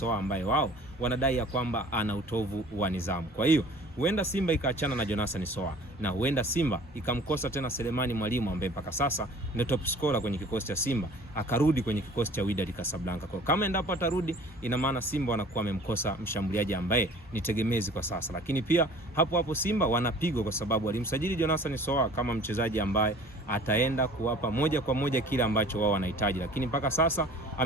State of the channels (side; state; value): both; normal; correlation 0.48